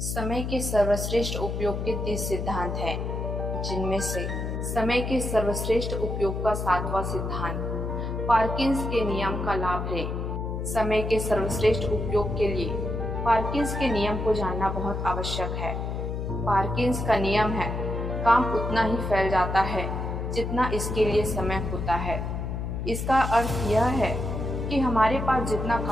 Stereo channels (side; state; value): left; noise; hum, 3 dB below the sound